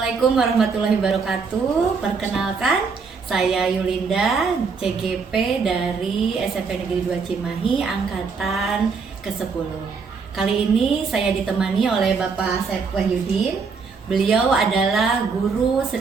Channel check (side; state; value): left; quieter; 5.1 dB